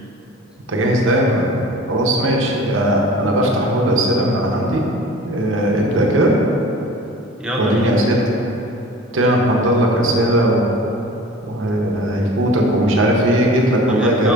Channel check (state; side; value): normal; both; correlation 0.43